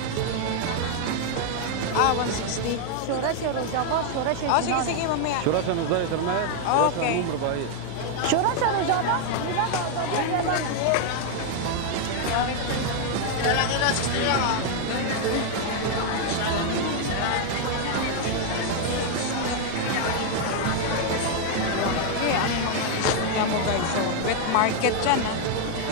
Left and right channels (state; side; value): different; both; correlation 0.00